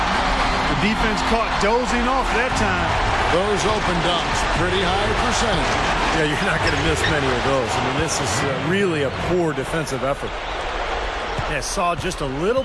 The defense caught dozing off that time. Those open dunks, pretty high percentage. Yeah, you're not going to miss many of those. I mean, this is really a poor defensive effort. Yeah, saw just a little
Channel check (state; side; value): identical; both; correlation 1.00